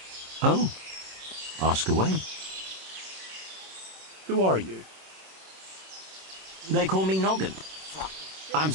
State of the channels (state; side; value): late; left; 26 ms